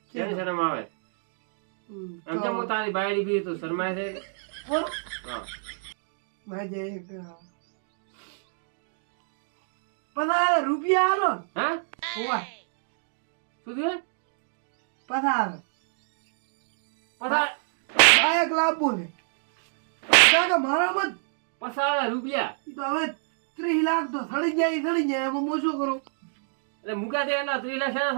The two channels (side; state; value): left; silent; digital silence